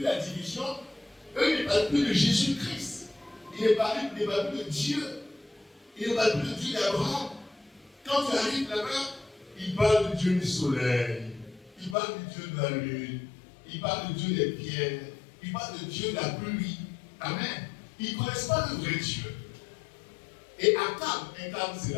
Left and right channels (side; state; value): right; drops out; at 12.0 s